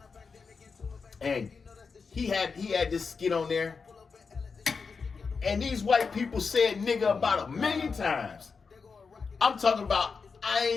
And he had this skit on there, and these white people said nigga about 1 million times. I'm talking about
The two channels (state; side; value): quieter; right; 5.1 dB